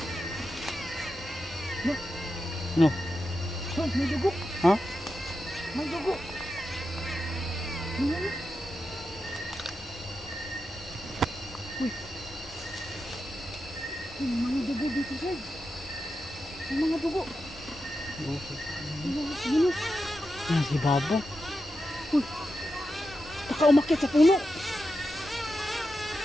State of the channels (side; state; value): both; normal; correlation 0.89